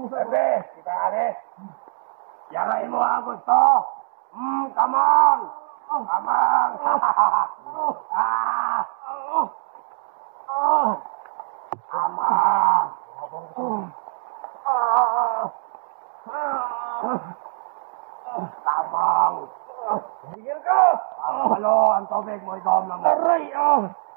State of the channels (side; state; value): left; silent; digital silence